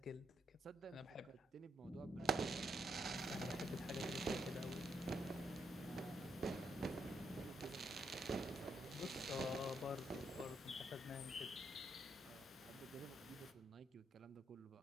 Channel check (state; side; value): normal; both; correlation 0.77